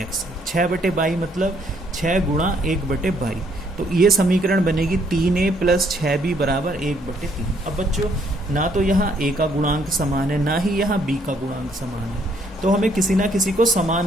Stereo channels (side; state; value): both; normal; correlation 0.68